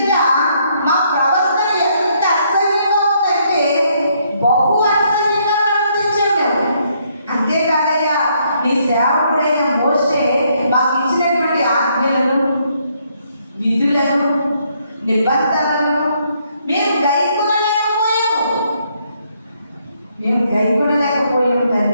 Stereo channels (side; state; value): both; inverted; correlation -0.71